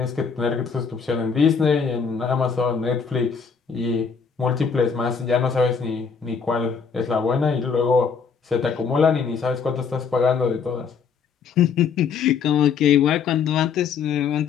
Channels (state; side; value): quieter; right; 6.0 dB